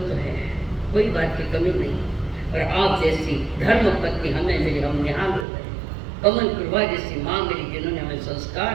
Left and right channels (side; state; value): left; drops out; at 5.5 s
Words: तो है, कोई बात की कमी नहीं, और आप जैसी धर्म पत्नी हमें मिली, हम यहाँ हो गए। कमल प्रभा जैसी माँ मिली जिन्होंने हमें संस्कार